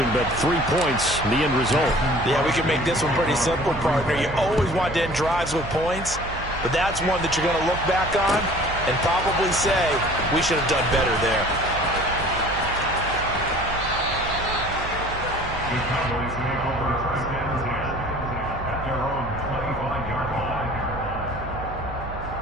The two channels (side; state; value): right; noise; hum, 11 dB below the sound